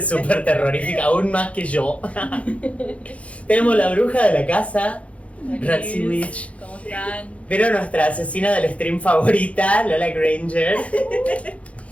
súper terrorífica, aún más que yo. Tenemos la bruja de la casa, Ratsy Witch. ¿Cómo están? Vieron nuestra asesina del stream favorita, Lola Granger.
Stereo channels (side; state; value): right; late; 0.064 ms